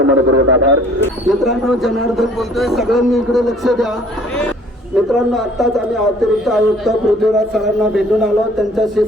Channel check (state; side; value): normal; both; correlation 0.55